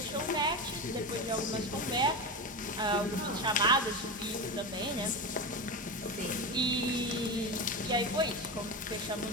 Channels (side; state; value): both; normal; correlation 0.20